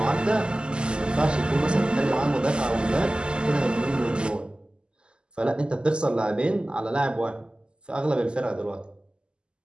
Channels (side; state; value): left; late; 0.049 ms